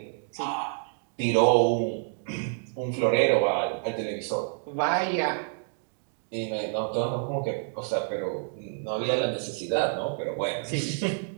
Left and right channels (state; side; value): silent; left; 59 dB below the other